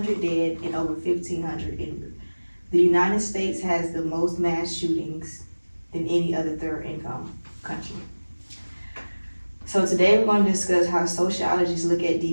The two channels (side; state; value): both; inverted; correlation -1.00